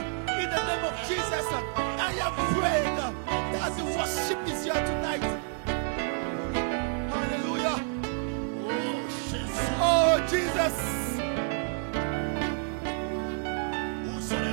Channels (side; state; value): left; silent; 56 dB below the other